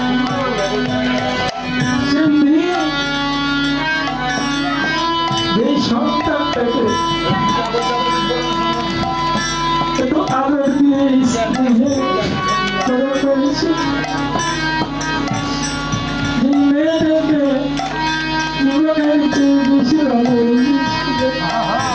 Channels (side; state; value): both; identical; correlation 1.00